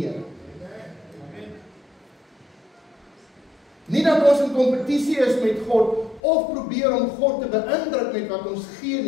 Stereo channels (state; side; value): drops out; right; at 6.2 s